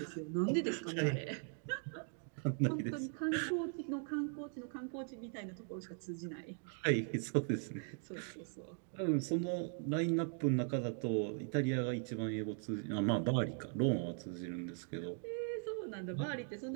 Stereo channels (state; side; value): silent; left; 51 dB below the other